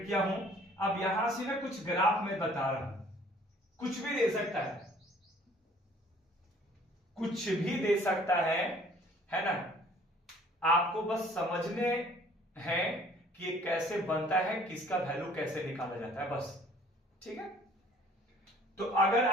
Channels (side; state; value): both; normal; correlation 0.55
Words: किया हूं। अब यहां से मैं कुछ ग्राफ में बता रहा हूं, कुछ भी दे सकता है, कुछ भी दे सकता है ना। आपको बस समझने हैं कि ये कैसे बनता है, किसका वैल्यू कैसे निकाला जाता है, बस। ठीक है, तो अगर